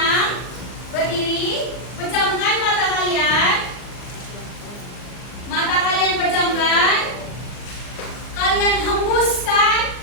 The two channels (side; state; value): right; late; 39 ms